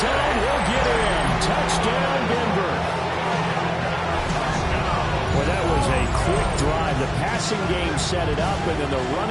he'll get in. Touchdown, Denver. Well, that was a quick drive The passing game set it up, and then the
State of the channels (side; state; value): both; identical; correlation 1.00